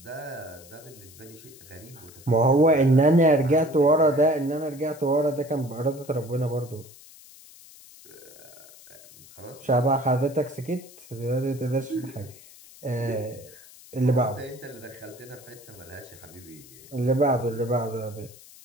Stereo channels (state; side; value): noise; left; hiss, 21 dB below the sound